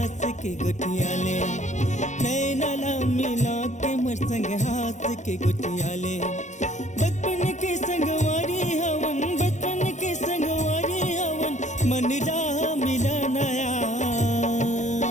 के गुटिया ले, नैनला मिला के मोर संग हाथ के गुटिया ले। बचपन के संगवारी हवन, बचपन के संगवारी हवन, मन राह मिला नया।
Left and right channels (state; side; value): late; right; 0.34 ms